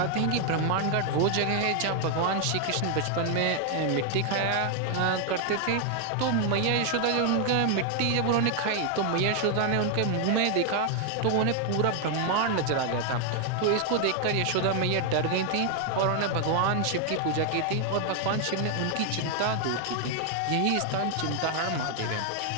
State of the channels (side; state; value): both; different; correlation 0.00